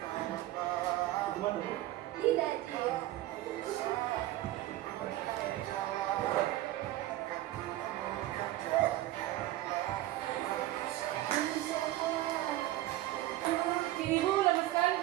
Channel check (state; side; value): quieter; left; 15.6 dB